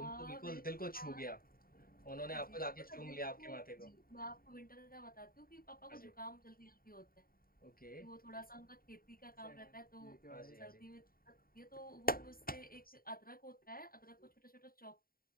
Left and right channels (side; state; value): right; late; 0.43 ms